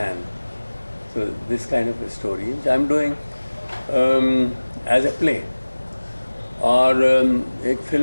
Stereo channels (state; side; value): inverted; both; correlation -1.00